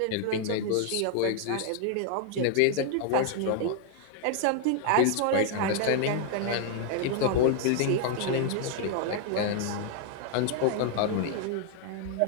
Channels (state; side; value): different; both; correlation 0.00